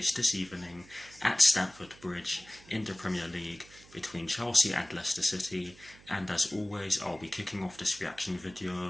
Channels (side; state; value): right; noise; hum, 23 dB below the sound